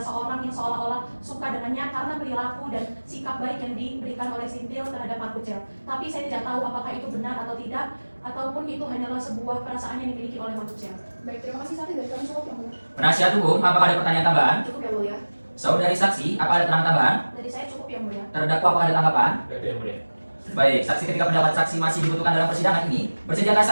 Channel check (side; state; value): both; inverted; correlation -1.00